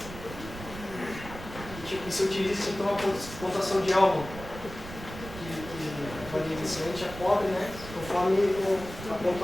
E se utiliza então a pontuação de Elman, que varia inicialmente a pobre, conforme a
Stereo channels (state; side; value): noise; right; rumble, 12 dB below the sound